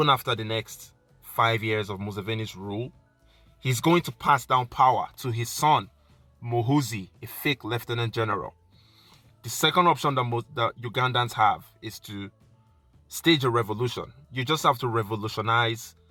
after the next 5 years of Museveni's rule, he's going to pass down power to his son, Muhoozi, a fake lieutenant general. The second option that Ugandans have is to stage a revolution. You just have to revolutionize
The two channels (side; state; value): both; identical; correlation 1.00